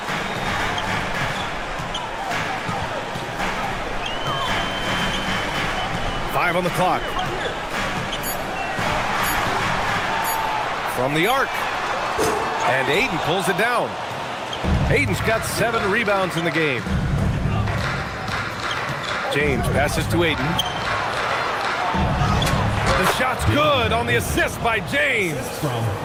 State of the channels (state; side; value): identical; both; correlation 1.00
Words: Five on the clock. From the arc. And Ayton pulls it down. Ayton's got 7 rebounds in the game. James passes to Ayton. The shot's good on the assist by James.